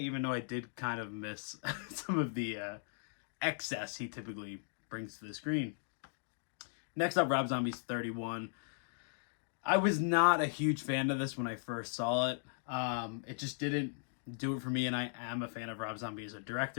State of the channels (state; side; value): silent; right; digital silence